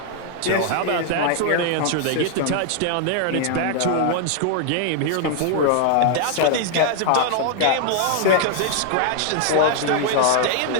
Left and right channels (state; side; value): different; both; correlation 0.00